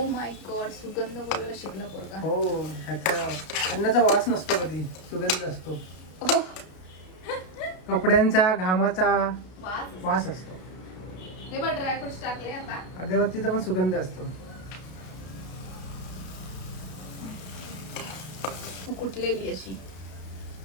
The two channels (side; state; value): right; late; 32 ms